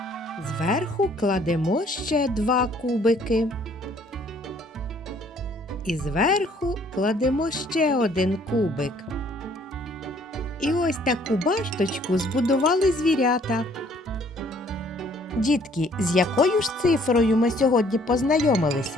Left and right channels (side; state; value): both; normal; correlation 0.61